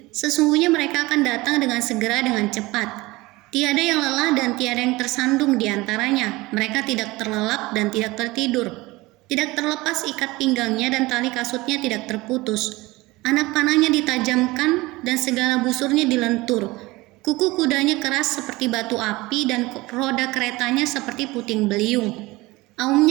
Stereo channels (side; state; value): left; quieter; 21.0 dB